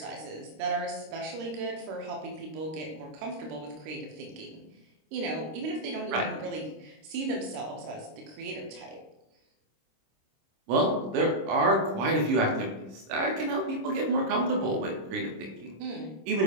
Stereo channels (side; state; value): left; late; 26 ms